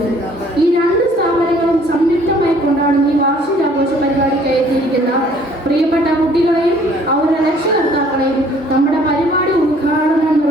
ഈ രണ്ട് സ്ഥാപനങ്ങളും സംയുക്തമായി കൊണ്ടാടുന്ന ഈ വാർഷികാഘോഷ പരിപാടിക്ക് എത്തിയിരിക്കുന്ന പ്രിയപ്പെട്ട കുട്ടികളെയും അവരുടെ രക്ഷകർത്താക്കളെയും നമ്മുടെ പരിപാടി ഉദ്ഘാടനം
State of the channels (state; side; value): normal; both; correlation 0.58